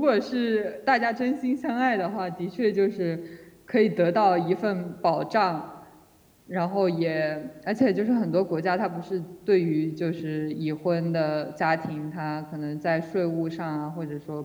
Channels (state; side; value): identical; both; correlation 1.00